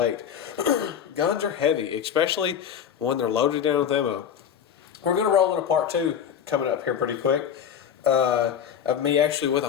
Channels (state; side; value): quieter; right; 8.4 dB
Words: Guns are heavy, especially when they're loaded down with ammo. We're going to roll into part 2 coming up here pretty quick. Of me actually with a